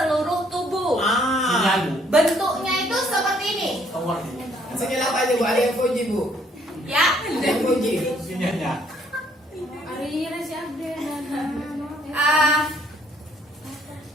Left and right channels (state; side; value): normal; both; correlation 0.65